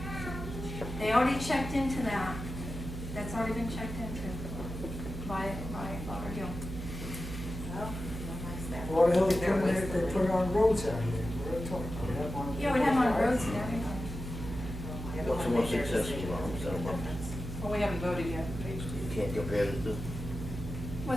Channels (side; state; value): right; noise; hum, 7 dB below the sound